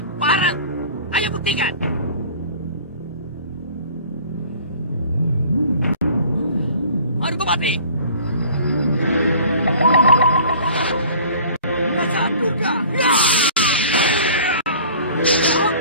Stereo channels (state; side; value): inverted; both; correlation -0.47